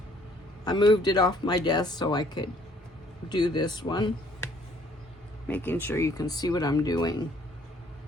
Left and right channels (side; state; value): both; normal; correlation 0.61